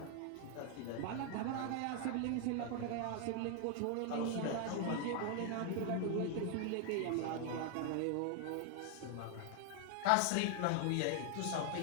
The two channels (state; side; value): different; both; correlation 0.00